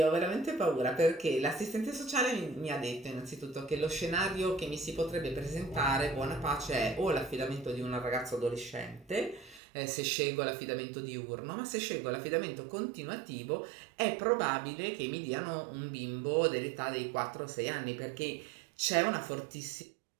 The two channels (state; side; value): drops out; left; at 9.6 s